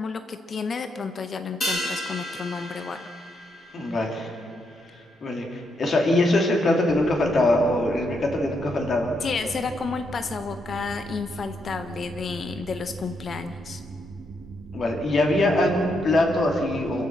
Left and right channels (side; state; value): both; normal; correlation 0.79